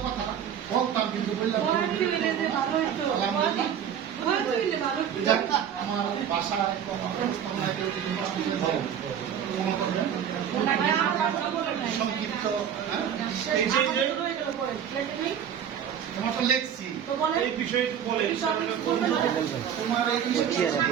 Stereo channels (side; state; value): left; quieter; 8.8 dB